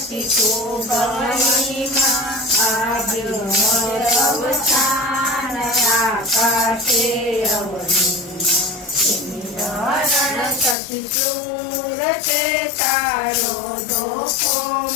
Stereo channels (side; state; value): right; drops out; at 10.8 s